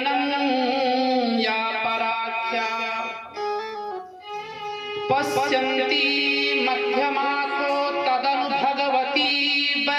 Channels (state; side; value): identical; both; correlation 1.00